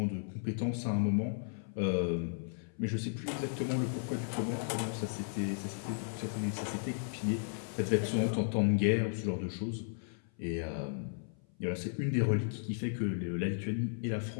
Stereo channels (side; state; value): right; silent; 54 dB below the other